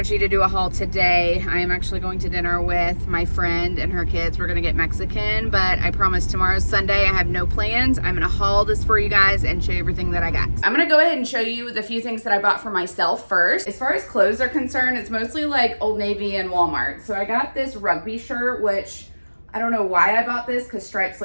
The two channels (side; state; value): both; inverted; correlation -1.00